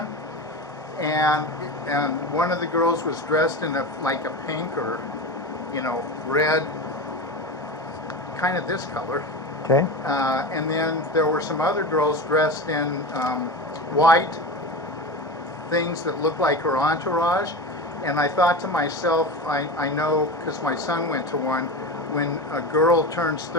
and one of the girls was dressed in like a pink or red, kind of this color. Okay. And then there were some other girls dressed in white things that looked like her entourage. And I thought to myself, I know, because my son went to one, when a girl turns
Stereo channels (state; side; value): normal; both; correlation 0.25